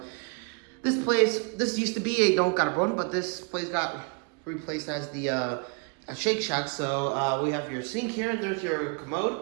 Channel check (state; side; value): quieter; left; 36.1 dB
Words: this used to be a Don Carbon, but this place got replaced as the a Shake Shack. So we have your sink here, and there's your